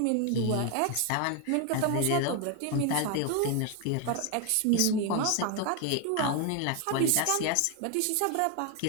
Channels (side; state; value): both; different; correlation 0.01